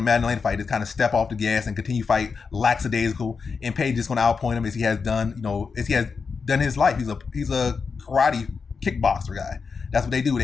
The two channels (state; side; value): quieter; right; 5.2 dB